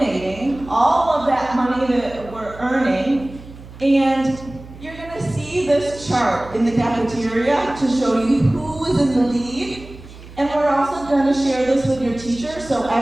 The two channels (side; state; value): right; noise; hum, 17 dB below the sound